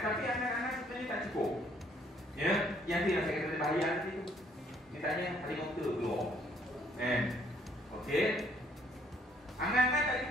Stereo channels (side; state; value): both; normal; correlation 0.65